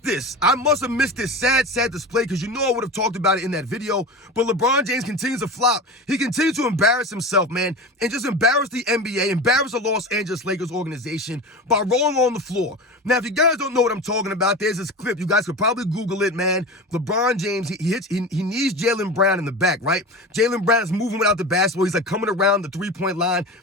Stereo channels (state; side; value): normal; both; correlation 0.29